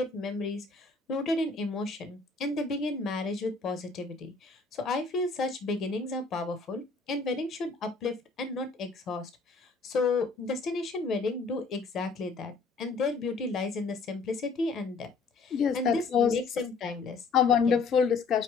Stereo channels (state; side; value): quieter; right; 4.3 dB